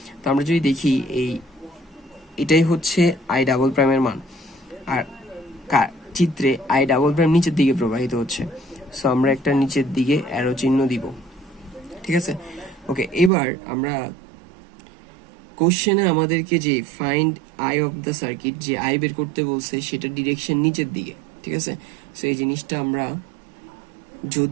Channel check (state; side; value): drops out; left; at 13.3 s